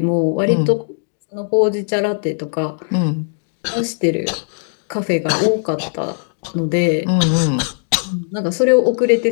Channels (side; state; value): right; silent; digital silence